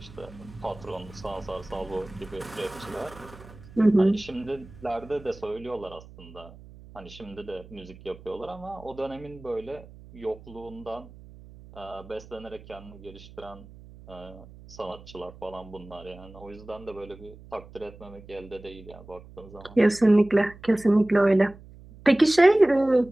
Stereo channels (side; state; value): right; noise; hum, 19 dB below the sound